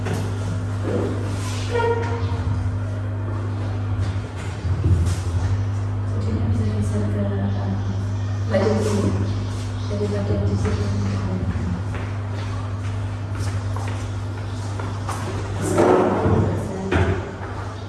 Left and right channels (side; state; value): both; identical; correlation 1.00